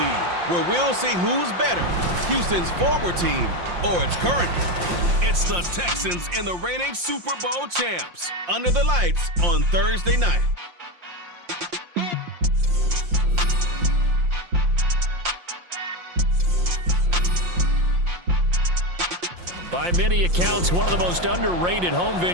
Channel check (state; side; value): late; left; 5.7 ms